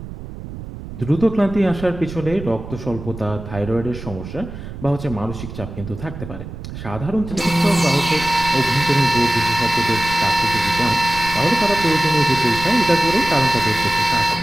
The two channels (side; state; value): right; noise; rumble, 11 dB below the sound